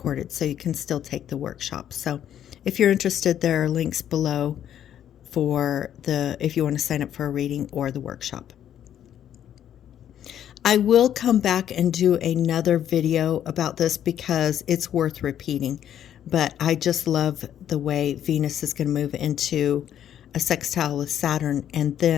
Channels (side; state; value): right; quieter; 10.3 dB